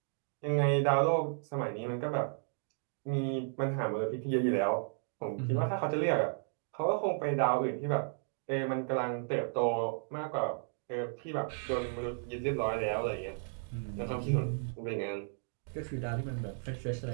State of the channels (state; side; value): silent; left; digital silence